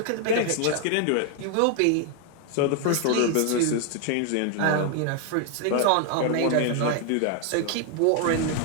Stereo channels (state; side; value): different; both; correlation 0.00